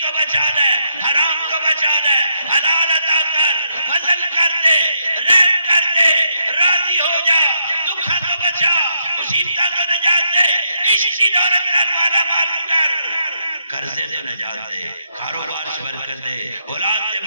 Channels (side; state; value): both; inverted; correlation -0.77